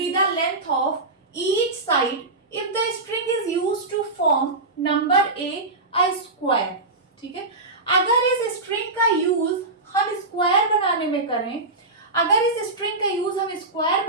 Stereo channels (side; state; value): left; quieter; 3.1 dB